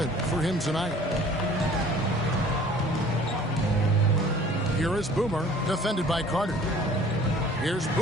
for him tonight. Here is Boomer, defended by Carter. Here's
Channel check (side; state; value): both; normal; correlation 0.50